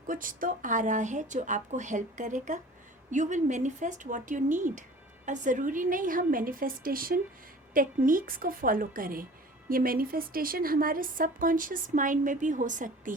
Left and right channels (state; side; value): normal; both; correlation 0.44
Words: कुछ तो आ रहा है जो आपको हेल्प करेगा। You will manifest what you need. और ज़रूरी नहीं हम मैनिफेस्टेशन टेक्निक्स को फॉलो करें, ये मैनिफेस्टेशन हमारे सबकॉन्शियस माइंड में भी हो सकती